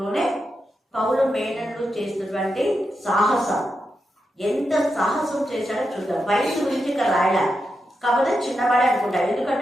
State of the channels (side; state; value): both; normal; correlation 0.87